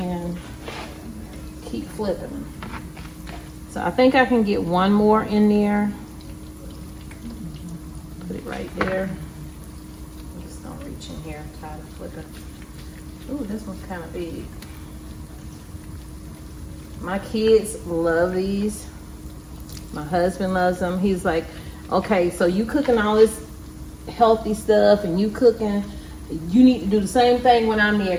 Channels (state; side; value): identical; both; correlation 1.00